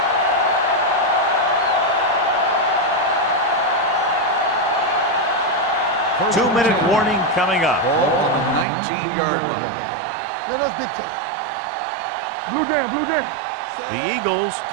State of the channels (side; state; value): left; drops out; at 8.7 s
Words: Two-minute warning coming up. Ball on the 19-yard line. Blue game, blue game. The Eagles